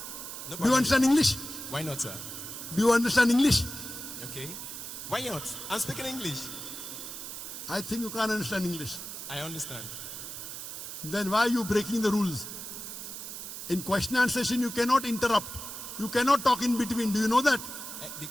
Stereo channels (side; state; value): right; noise; hiss, 9 dB below the sound